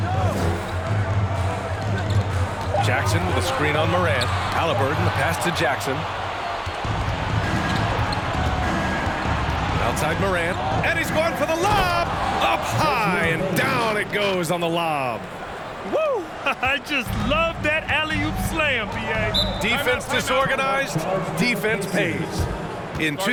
Jackson with a screen on Morant. Halliburton, the pass to Jackson. Outside Morant, and he's going for the lob! Up high, and down it goes on the lob. Woo! I just love that alley-oop slam, B.A. Defense disorganized, defense pays. In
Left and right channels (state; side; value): identical; both; correlation 1.00